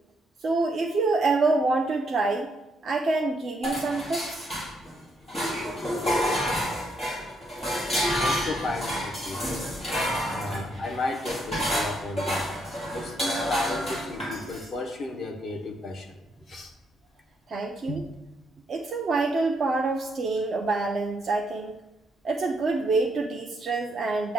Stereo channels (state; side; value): normal; both; correlation 0.75